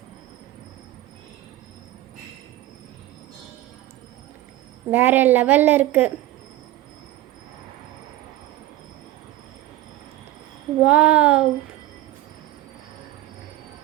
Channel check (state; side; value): quieter; left; 15.5 dB